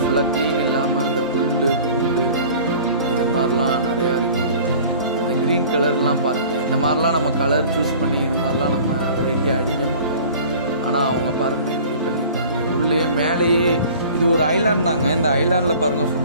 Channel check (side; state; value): both; inverted; correlation -0.45